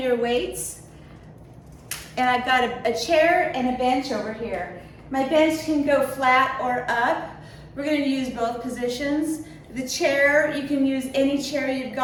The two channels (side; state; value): both; identical; correlation 1.00